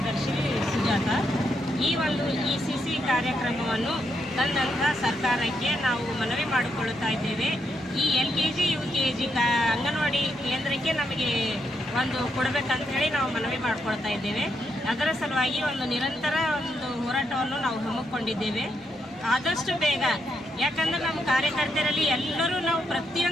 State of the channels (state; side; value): normal; both; correlation 0.80